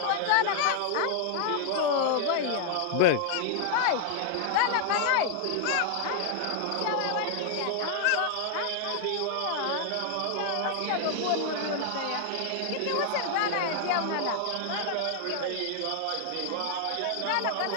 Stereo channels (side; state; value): both; different; correlation 0.00